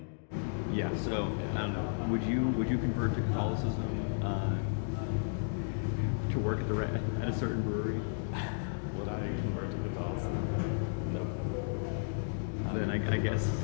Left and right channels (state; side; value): silent; right; digital silence